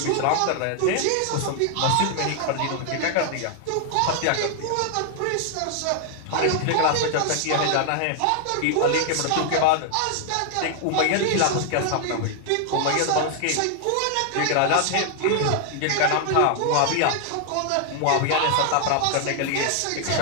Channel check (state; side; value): different; both; correlation 0.00